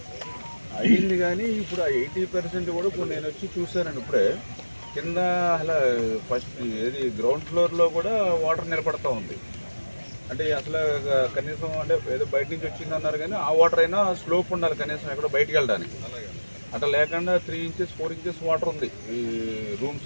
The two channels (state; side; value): inverted; both; correlation -1.00